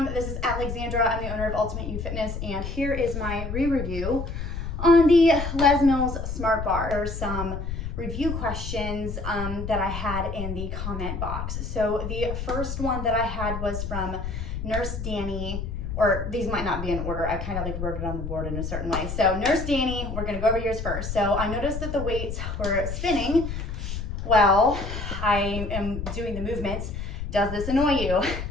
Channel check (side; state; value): left; noise; rumble, 5 dB below the sound